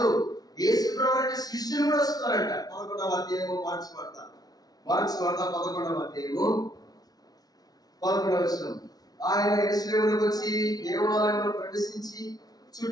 యేసు ప్రభువు అంటే శిష్యులు కూడా వస్తున్నారంట. 11వ అధ్యాయము మార్క్స్ వార్త 11వ అధ్యాయము 11వ వచనం. ఆయన యెరూషలేమునకు వచ్చి దేవాలయంలో ప్రవేశించి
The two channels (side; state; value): right; late; 0.19 ms